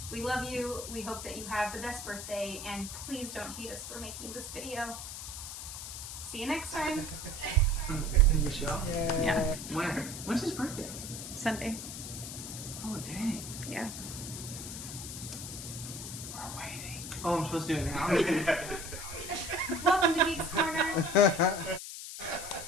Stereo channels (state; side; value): noise; left; hiss, 8 dB below the sound